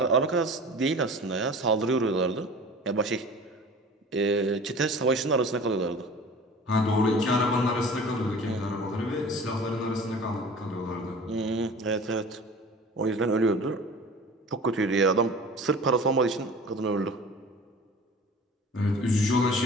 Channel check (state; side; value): normal; both; correlation 0.41